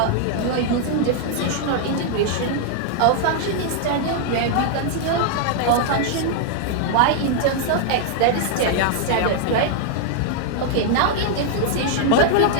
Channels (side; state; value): both; different; correlation 0.00